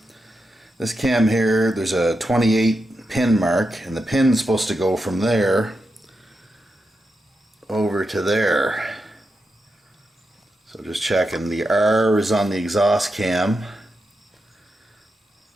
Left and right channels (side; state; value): both; normal; correlation 0.87